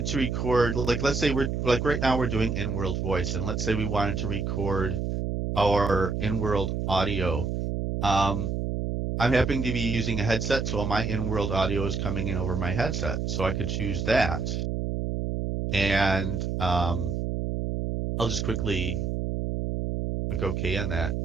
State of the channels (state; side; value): noise; right; hum, 1 dB below the sound